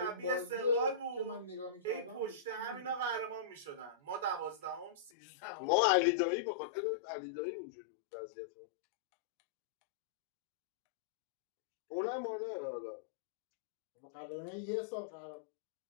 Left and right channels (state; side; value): drops out; right; at 5.1 s